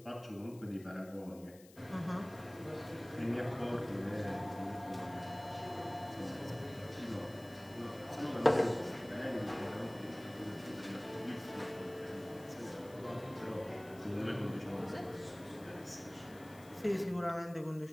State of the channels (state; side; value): noise; left; hiss, 22 dB below the sound